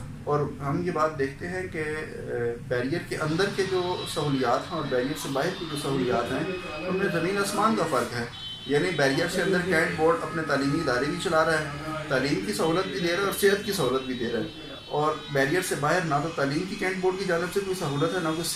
اور ہم یہ بات دیکھتے ہیں کہ بیریئر کے اندر کے جو سہولیات ہیں اور بیریئر سے باہر کی جو سہولیات ہیں ان میں زمین آسمان کا فرق ہے۔ یعنی بیریئر سے اندر کینٹ بورڈ اپنے تعلیمی ادارے بھی چلا رہا ہے، تعلیم کی سہولت بھی دے رہا ہے اور صحت کی سہولت بھی دے رہا ہے، اور بیریئر سے باہر نہ تو تعلیم کی کینٹ بورڈ کی جانب سے کوئی سہولت ہے نہ کوئی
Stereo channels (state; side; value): identical; both; correlation 1.00